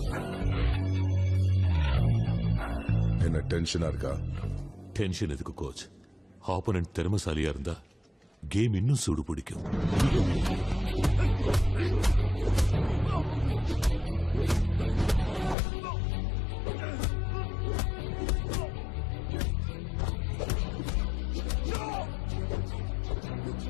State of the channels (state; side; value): drops out; right; at 15.6 s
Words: என்ன டென்ஷனா இருக்கா? டென்ஷன் எதுக்கு கோச்? ஆப்போனன்ட் திறமைசாலியா இருந்தா கேம் இன்னும் சூடு பிடிக்கும்.